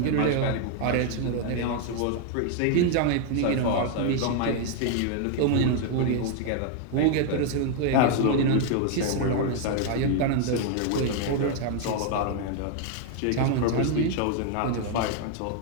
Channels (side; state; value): both; different; correlation 0.00